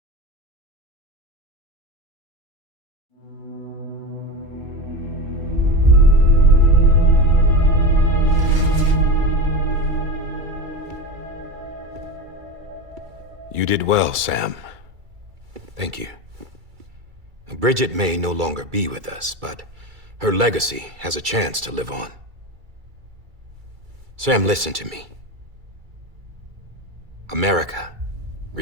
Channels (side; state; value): left; late; 2.3 ms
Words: You did well, Sam. Thank you. Bridget may no longer be with us, but her legacy has a chance to live on. Sam, listen to me. America,